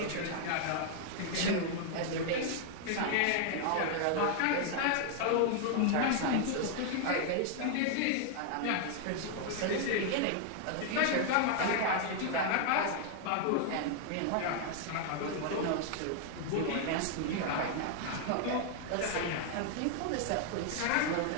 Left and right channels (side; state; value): both; different; correlation 0.00